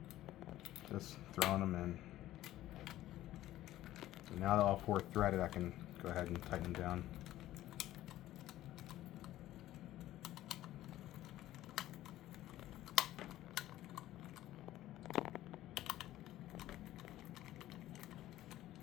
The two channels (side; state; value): right; quieter; 14.5 dB